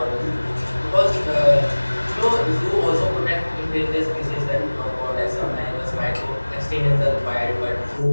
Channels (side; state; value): both; inverted; correlation -1.00